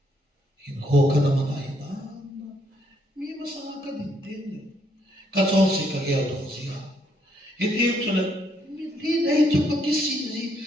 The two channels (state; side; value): normal; both; correlation 0.72